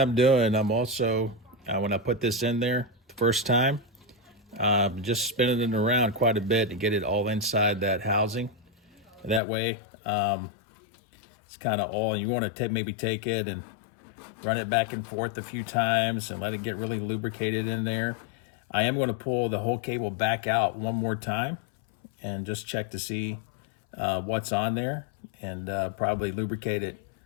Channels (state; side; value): drops out; right; at 9.4 s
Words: doing, I'm also, when I put this in there the first time, just spinning it around quite a bit to get it all inside that housing. That way, it's kind of all, you want to maybe take it and run it back and forth a few times and let it get really lubricated in there. I am going to pull the whole cable back out one more time and just check to see what's on there, and probably lubricate it